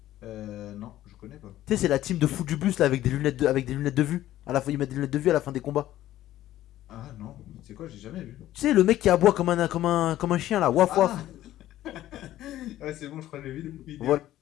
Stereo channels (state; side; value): quieter; right; 13.8 dB